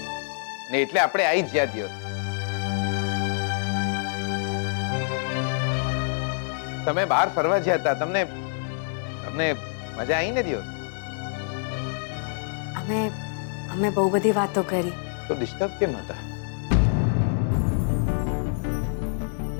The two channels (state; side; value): silent; right; digital silence